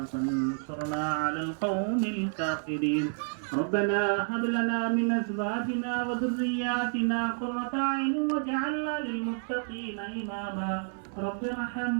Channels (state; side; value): silent; left; 58 dB below the other